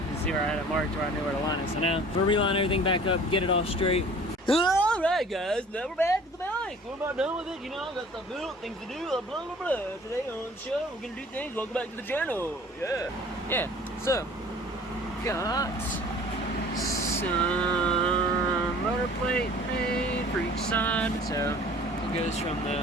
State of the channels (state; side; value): normal; both; correlation 0.48